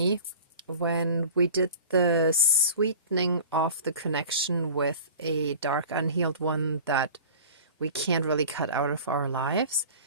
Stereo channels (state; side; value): inverted; both; correlation -0.40